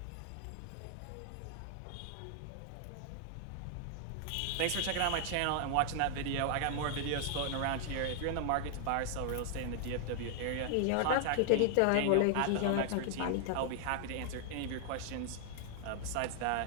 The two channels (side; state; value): both; different; correlation 0.00